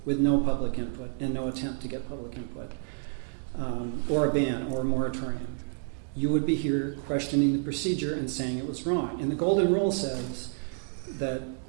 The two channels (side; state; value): left; silent; 58 dB below the other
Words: with no public input and no attempt to get public input, or a ban or a moratorium. You would be here questioning the procedure and saying it was wrong. And the golden rule says that